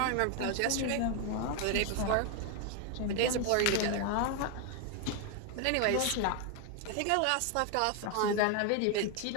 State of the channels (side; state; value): both; different; correlation 0.01